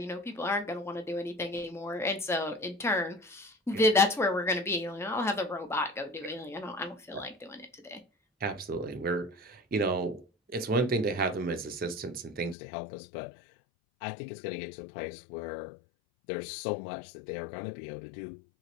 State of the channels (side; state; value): right; drops out; at 12.6 s